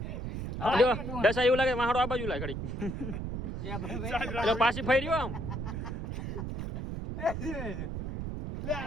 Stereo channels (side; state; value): right; noise; rumble, 4 dB below the sound